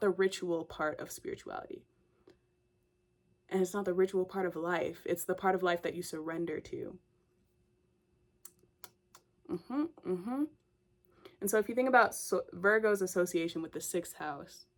ritual part of spirituality. And it's not the ritual part of life. It's the part of life that you surrender to. And so if you think about Virgo's association with the 6th house,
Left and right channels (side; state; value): both; identical; correlation 1.00